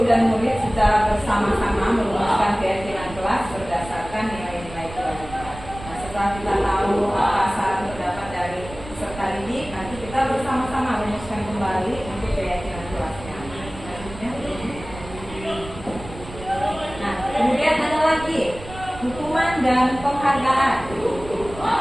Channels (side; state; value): right; noise; rumble, 14 dB below the sound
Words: dan murid secara bersama-sama merumuskan keyakinan kelas berdasarkan nilai-nilai kewajiban. Nah, setelah kita tahu apa saran pendapat dari peserta didik, nanti kita bersama-sama merumuskan kembali untuk keyakinan kelasnya. Nah, kemudian ada lagi hukuman dan penghargaan.